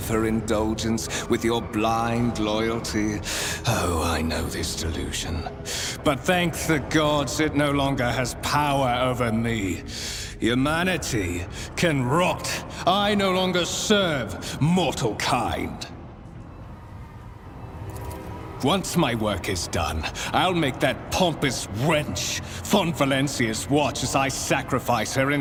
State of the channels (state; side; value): identical; both; correlation 1.00